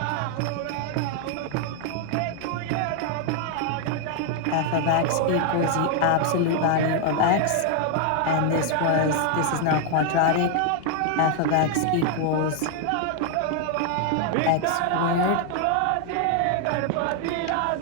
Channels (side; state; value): both; different; correlation 0.00